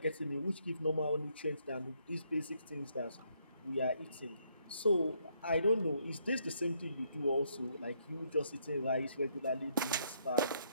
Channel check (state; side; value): inverted; both; correlation -0.72